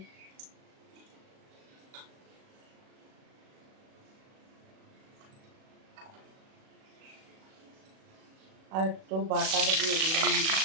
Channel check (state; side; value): late; left; 37 ms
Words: আর একটু বাটার দিয়ে দিলাম।